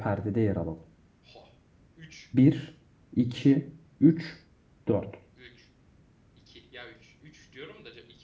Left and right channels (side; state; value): both; identical; correlation 1.00